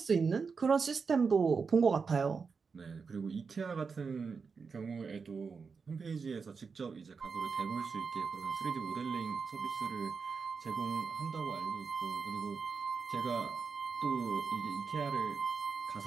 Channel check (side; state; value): left; quieter; 5.2 dB